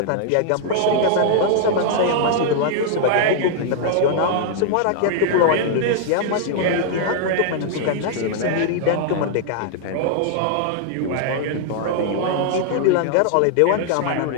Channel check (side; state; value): both; different; correlation -0.01